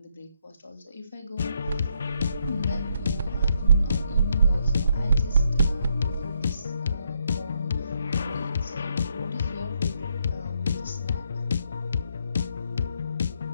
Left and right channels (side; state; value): both; inverted; correlation -0.75